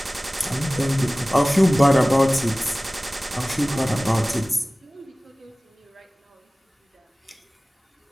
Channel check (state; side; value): normal; both; correlation 0.98